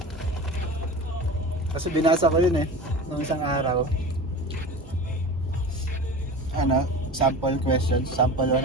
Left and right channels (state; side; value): normal; both; correlation 0.33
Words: Kasi binasa ko yun eh, nung isang araw. Ano, sample questions, sample